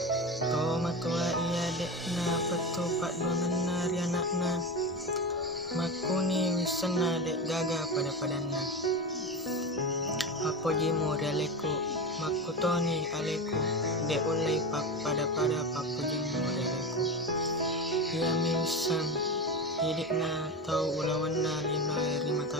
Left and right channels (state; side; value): normal; both; correlation 0.22